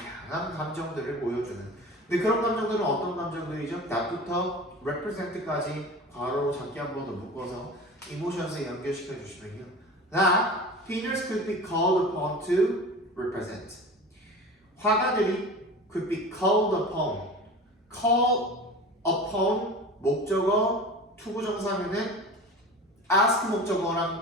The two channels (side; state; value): both; normal; correlation 0.35